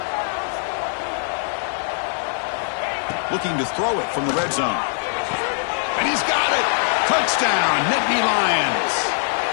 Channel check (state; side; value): silent; right; digital silence